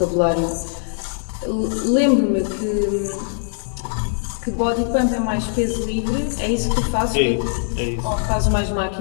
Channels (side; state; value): right; silent; 65 dB below the other